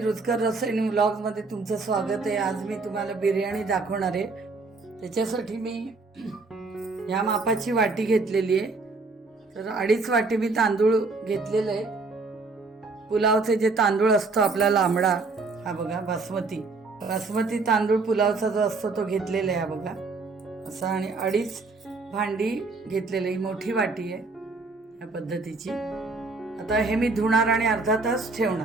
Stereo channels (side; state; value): left; quieter; 3.8 dB